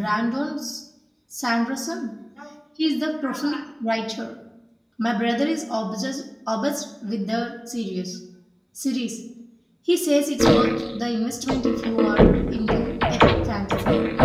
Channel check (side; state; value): both; identical; correlation 1.00